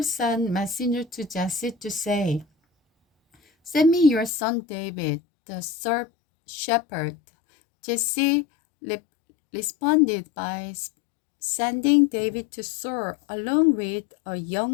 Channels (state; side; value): drops out; right; at 4.3 s